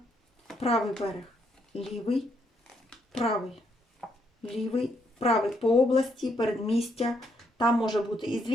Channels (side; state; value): both; normal; correlation 0.75